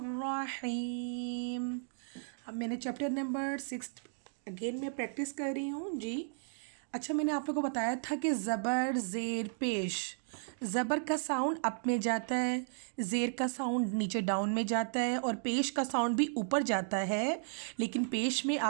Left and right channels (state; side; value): silent; left; digital silence